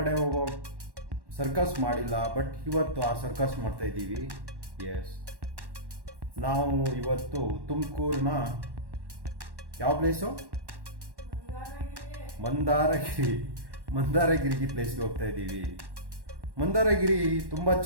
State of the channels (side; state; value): left; late; 1.1 ms